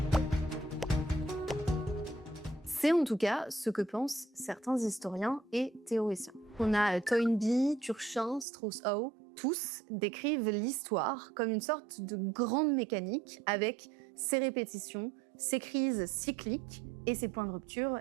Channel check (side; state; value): left; drops out; at 8.5 s